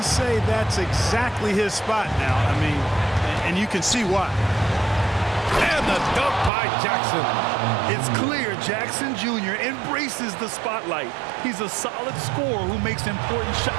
say that's exactly his spot now. I mean, and you can see why. And the dunk by Jackson. It's clear Jackson Jr. embraces the spotlight. He's a solid scorer who makes important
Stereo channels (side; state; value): left; drops out; at 6.5 s